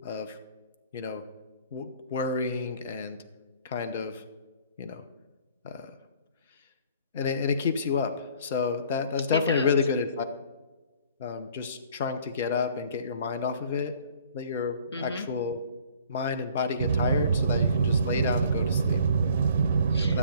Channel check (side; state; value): both; inverted; correlation -0.54